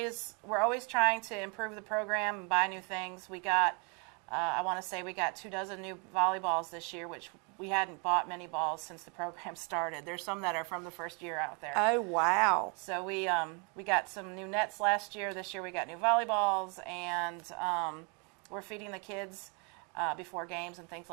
trying to improve the program and buy new things. We got, I want to say, we got 24 new volleyballs this year, which we hadn't bought many balls since the program started. There's some that are from the first year out there. Oh wow! So we got some new nets last year. This year we got new volleyballs, and we're feeding the kids before games and things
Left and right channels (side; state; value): left; quieter; 35.1 dB